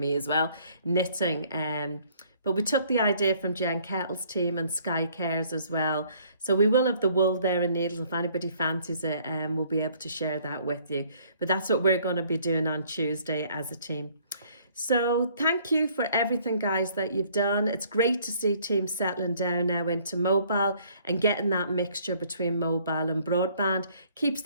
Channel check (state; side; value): inverted; both; correlation -0.61